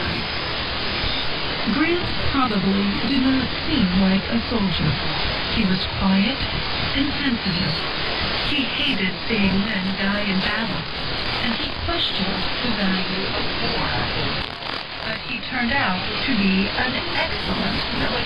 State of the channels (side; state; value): both; identical; correlation 1.00